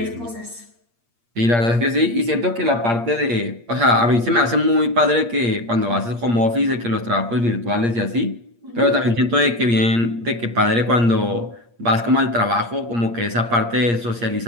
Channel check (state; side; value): late; left; 8.6 ms